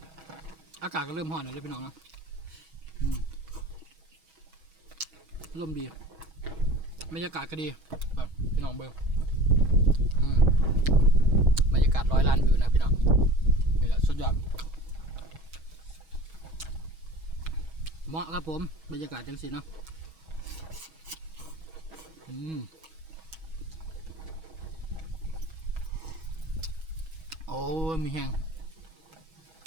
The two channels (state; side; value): late; left; 6.2 ms